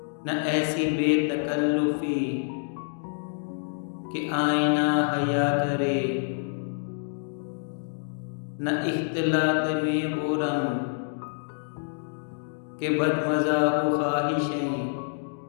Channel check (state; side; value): silent; right; digital silence